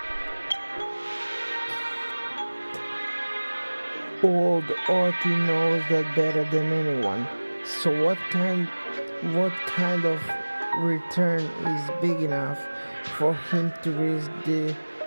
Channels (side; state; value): both; inverted; correlation -1.00